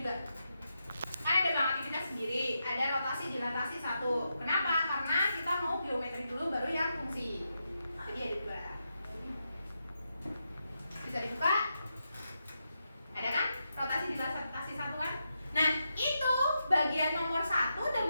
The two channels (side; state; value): both; inverted; correlation -0.85